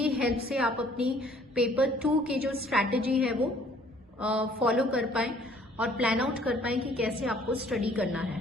हेल्प से आप अपनी पेपर 2 की जो स्ट्रैटेजी है वो फॉलो कर पाएं और प्लान आउट कर पाएं कि कैसे आपको स्टडी करना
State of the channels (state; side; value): normal; both; correlation 0.58